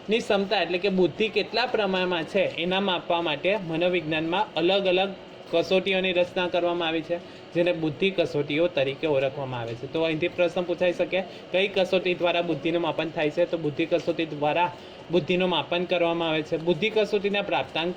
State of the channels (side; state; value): both; identical; correlation 1.00